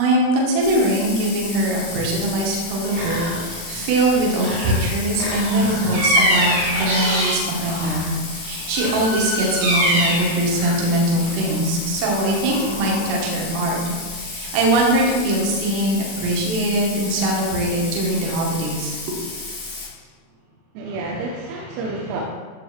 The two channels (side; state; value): left; late; 36 ms